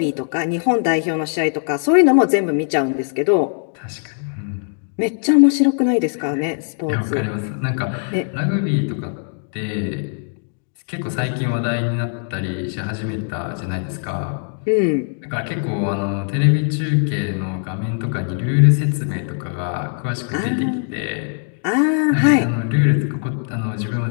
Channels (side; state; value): right; silent; 65 dB below the other